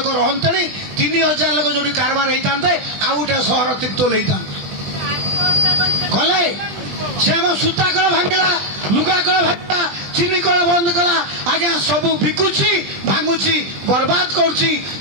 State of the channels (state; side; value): late; left; 20 ms